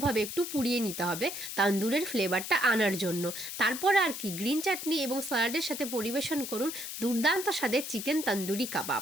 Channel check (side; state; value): left; noise; hiss, 7 dB below the sound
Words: একটু পুড়িয়ে নিতে হবে তান্দুরের ফ্লেভারটা আনার জন্য। তারপর আর কি গ্রিন চাটনি এবং স্যালাডের সাথে পরিবেশন করুন দুর্দান্ত স্বাদের চিকেন তন্দুরি কাবাব।